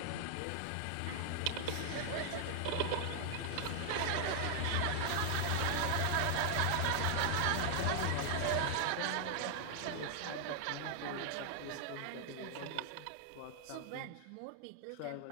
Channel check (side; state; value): both; different; correlation 0.00